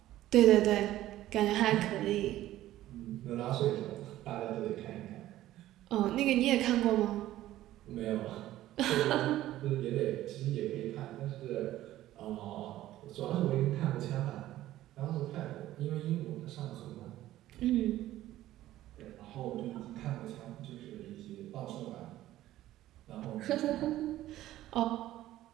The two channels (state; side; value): quieter; left; 14.4 dB